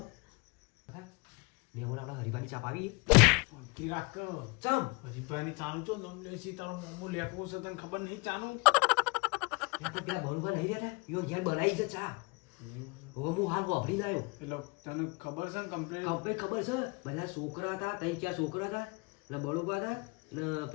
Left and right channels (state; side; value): quieter; right; 29.4 dB